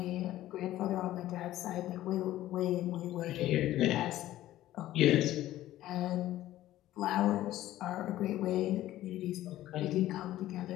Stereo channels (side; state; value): right; quieter; 14.5 dB